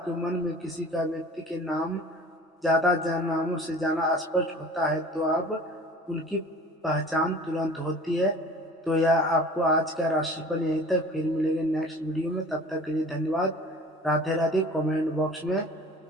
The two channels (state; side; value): normal; both; correlation 0.44